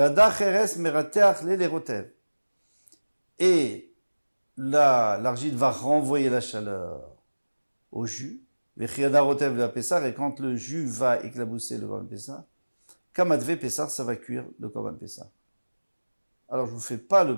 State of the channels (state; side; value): inverted; both; correlation -1.00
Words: kheres merateach le rotev. Et l'argile va renvoyer la chaleur au jus, vechiada rotev la pessar, et quand le jus va éclabousser le korban pessar, kamadve pessar, ça va cuire le korban pessar. Alors, je vous fais pas